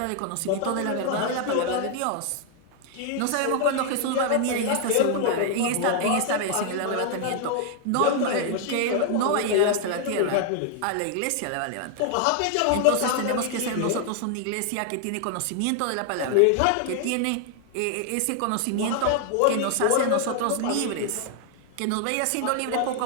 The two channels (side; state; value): both; different; correlation 0.00